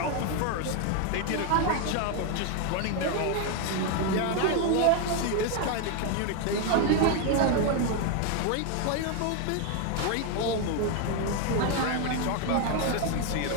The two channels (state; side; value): different; both; correlation 0.01